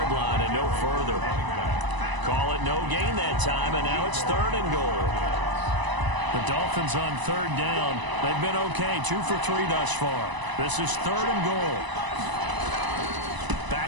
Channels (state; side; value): late; left; 1.0 ms